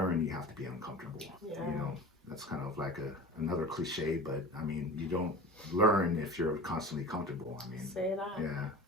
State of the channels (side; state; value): both; normal; correlation 0.36